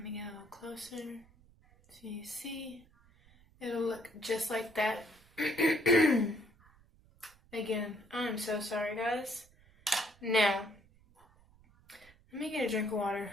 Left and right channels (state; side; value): noise; right; rumble, 28 dB below the sound